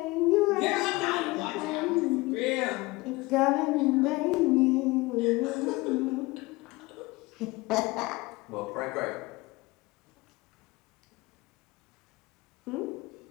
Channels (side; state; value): right; quieter; 22.2 dB